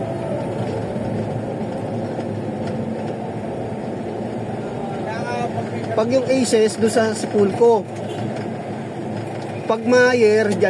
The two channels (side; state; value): both; identical; correlation 1.00